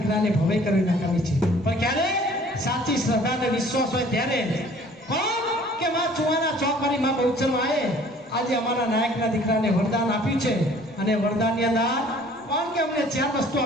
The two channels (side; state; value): both; normal; correlation 0.53